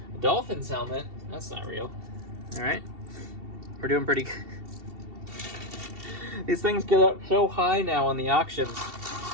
A Dolphins helmet. That's not real. All right. We're doing pretty good. These things get up so high now on the auctions.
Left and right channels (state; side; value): late; left; 2.7 ms